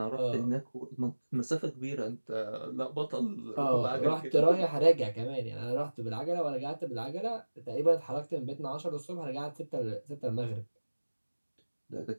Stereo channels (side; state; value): both; inverted; correlation -1.00